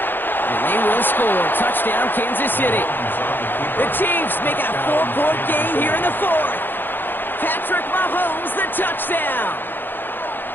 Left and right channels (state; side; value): late; right; 0.095 ms